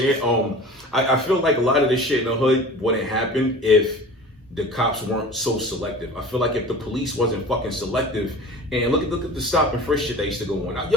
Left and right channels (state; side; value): normal; both; correlation 0.39